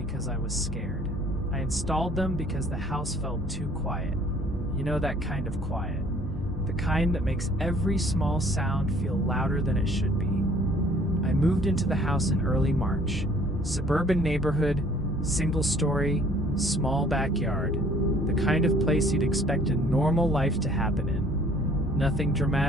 I was scared. I installed them because the house felt too quiet. You know, that kind of quiet. The kind that makes every small sound feel louder than it should be. I moved into the house in early March. Suburban neighborhood, single story, small backyard. The kind of place you'd expect a normal life to happen in. Nothing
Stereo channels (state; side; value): normal; both; correlation 0.56